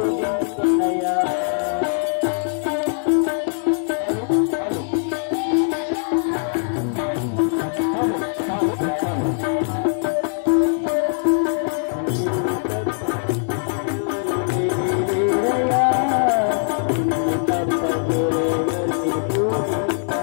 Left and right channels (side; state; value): right; silent; 65 dB below the other